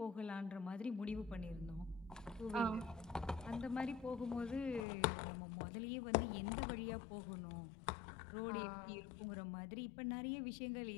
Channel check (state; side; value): drops out; right; at 4.9 s